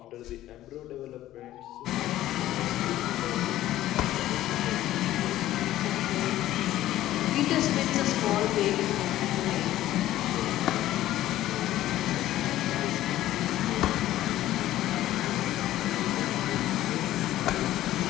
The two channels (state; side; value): quieter; right; 14.2 dB